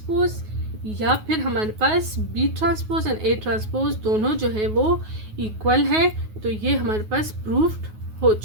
या फिर हमारे पास B transpose and A transpose दोनों जो है वो इक्वल है। तो ये हमारे पास प्रूफ्ड हो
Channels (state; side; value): late; left; 9.4 ms